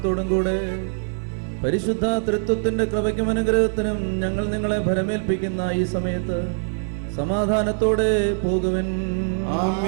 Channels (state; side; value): silent; left; digital silence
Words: കൂടെ പരിശുദ്ധ തൃത്വത്തിന്റെ കൃപയ്ക്കും അനുഗ്രഹത്തിനും ഞങ്ങൾ നിങ്ങളെ ഭരമേൽപ്പിക്കുന്ന ഈ സമയത്ത് സമാധാനത്തോടെ പോകുവിൻ.